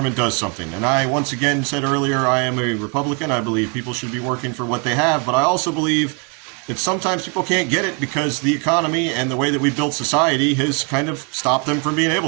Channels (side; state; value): left; quieter; 33.4 dB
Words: does something. And I, once again, said earlier, I am a Republican. I believe people should be working for what they have. But I also believe that sometimes people can't get it because the economy and the way that we built society has kind of stopped them from being